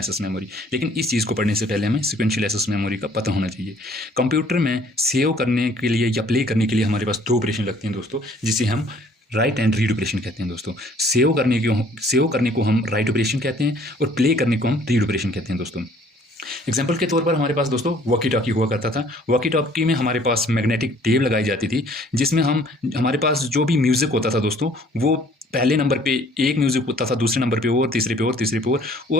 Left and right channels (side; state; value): both; normal; correlation 0.57